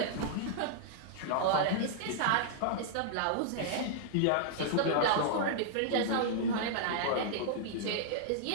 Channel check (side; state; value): both; different; correlation -0.01